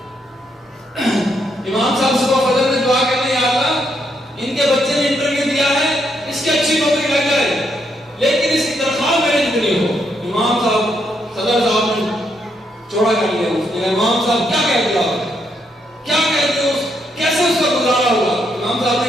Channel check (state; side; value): normal; both; correlation 0.77